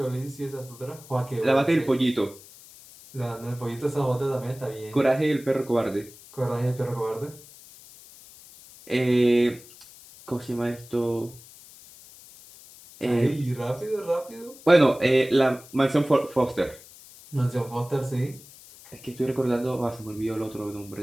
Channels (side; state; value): left; noise; hiss, 21 dB below the sound